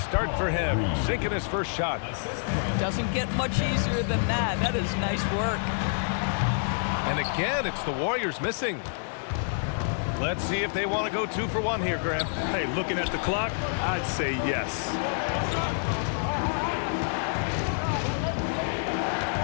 for him. Sinking his first shot. Doesn't get much easier than that. That is nice work. And again, it's the Warriors missing. Let's see if they want to go 2 for 1 here, Graham. Hey, looking at the clock, I'd say yes.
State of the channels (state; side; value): silent; right; digital silence